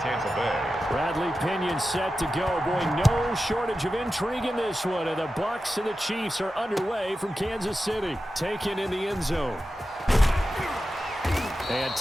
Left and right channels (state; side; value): normal; both; correlation 0.92